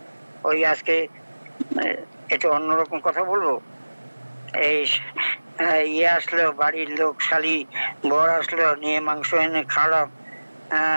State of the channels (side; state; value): both; inverted; correlation -1.00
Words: ওই আজকে এটা অন্যরকম কথা বলবো, এই ইয়ে আসলো, বাড়ির লোক শালি বর আসলো, নিয়ে মাংস এনে খাওয়ালাম,